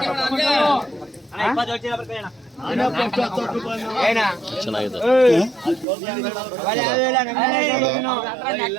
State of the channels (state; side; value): drops out; left; at 5.9 s